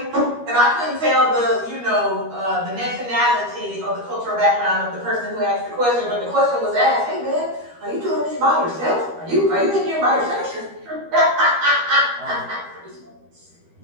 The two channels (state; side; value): late; left; 13 ms